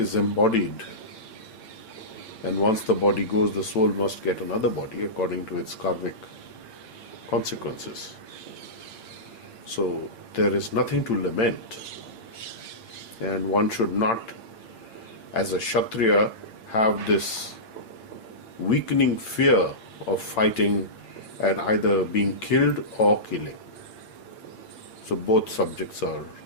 embodied, and once the body goes, the soul must get another body according to its karmic consequences. So there is nothing to lament. And one should not, as a Kshatriya, have this weakening fear of fighting and either being killed or killing. So both subjects are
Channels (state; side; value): late; right; 8.8 ms